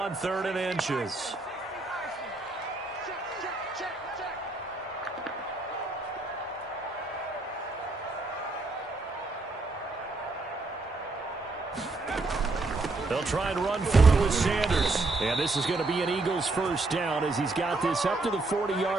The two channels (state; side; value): quieter; left; 3.3 dB